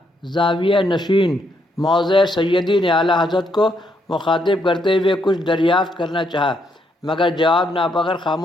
زاویہ نشین موضع سیدی نے اعلیٰ حضرت کو مخاطب کرتے ہوئے کچھ دریافت کرنا چاہا، مگر جواب ناپکر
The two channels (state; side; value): normal; both; correlation 0.75